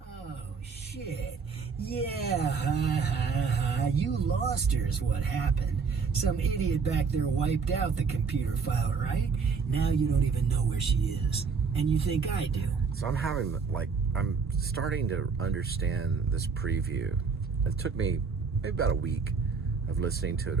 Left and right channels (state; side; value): quieter; left; 5.4 dB